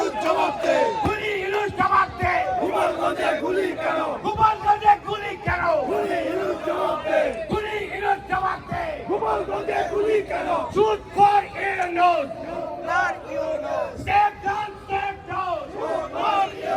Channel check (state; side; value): identical; both; correlation 1.00